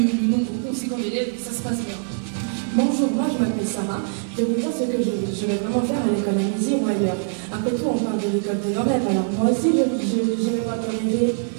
nombre conséquent d'élèves, ça se passe bien. Bonjour, moi je m'appelle Sarah. Je vais vous dire ce que je vais vraiment faire à l'école Amézières ou ailleurs. Après tout, on parle de l'école de nos rêves, alors moi aussi j'ai le droit de rêver.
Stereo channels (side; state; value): left; silent; 63 dB below the other